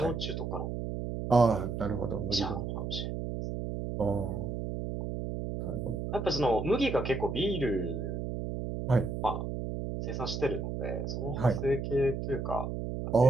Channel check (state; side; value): noise; right; hum, 4 dB below the sound